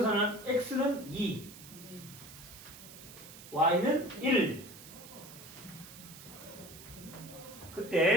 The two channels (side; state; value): right; noise; hiss, 16 dB below the sound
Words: x는 2 y는 1.